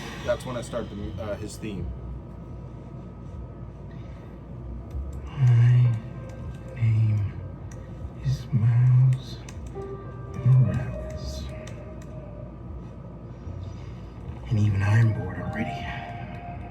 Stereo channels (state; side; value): identical; both; correlation 1.00